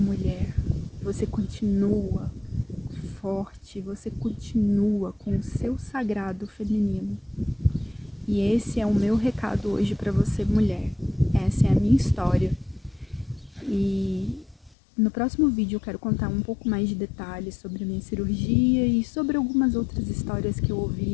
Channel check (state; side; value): drops out; right; at 14.8 s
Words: você continua forte, você continua com o seu sagrado feminino. E esse é o meu recado hoje para você, mulher. Essa é a minha história. E no próximo vídeo eu quero contar um pouco mais de detalhes sobre a minha cirurgia e sobre algumas outras histórias que eu ouvi